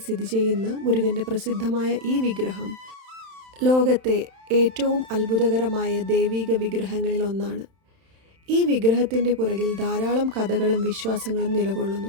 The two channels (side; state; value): left; late; 31 ms